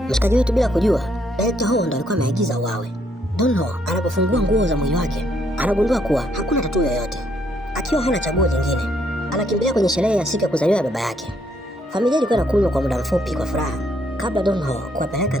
Mshikaji wetu bila kujua, Director Ho ndo alikuwa ameagiza uawe. Don Ho anapofungua nguo za mwili wake, anagundua kuwa hakuna tatuu yoyote. Akiwa hana chaguo lingine, anakimbilia kwenye sherehe ya siku ya kuzaliwa ya baba yake. Familia ilikuwa inakunywa kwa muda mfupi kwa furaha kabla Don Ho kuwapeleka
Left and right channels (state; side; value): normal; both; correlation 0.72